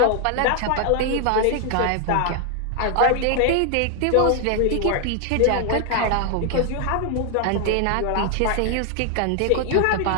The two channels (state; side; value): different; both; correlation 0.00